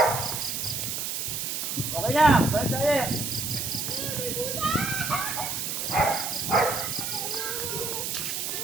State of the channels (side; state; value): right; noise; hiss, 2 dB below the sound